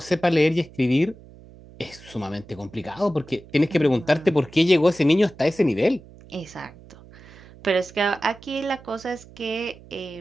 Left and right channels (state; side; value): noise; right; hum, 21 dB below the sound